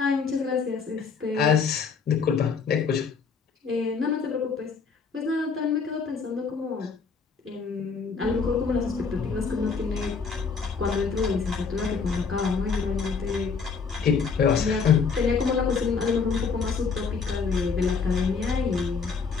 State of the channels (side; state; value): right; quieter; 5.3 dB